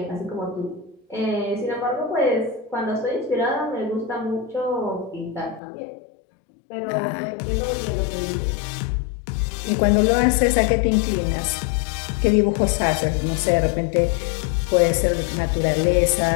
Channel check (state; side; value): drops out; right; at 5.6 s